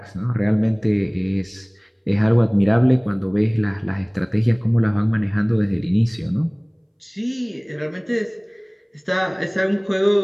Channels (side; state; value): both; identical; correlation 1.00